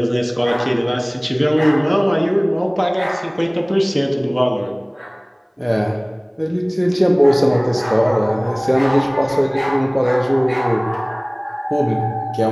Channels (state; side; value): identical; both; correlation 1.00